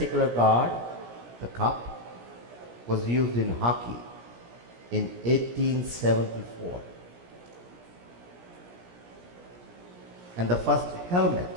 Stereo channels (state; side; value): late; left; 17 ms